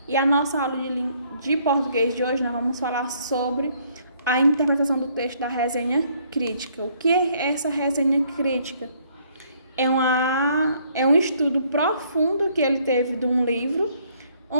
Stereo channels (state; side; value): inverted; both; correlation -0.66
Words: E a nossa aula de português de hoje, nós vamos falar sobre a interpretação do texto da resenha crítica. O que é essa resenha crítica? É um estudo profundo que ele teve de um livro,